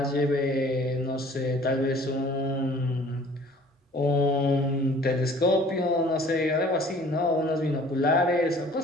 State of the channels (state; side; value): normal; both; correlation 0.51